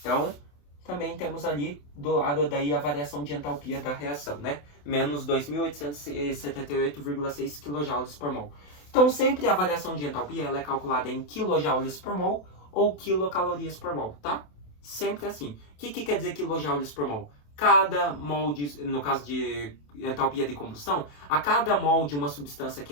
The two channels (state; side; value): late; right; 27 ms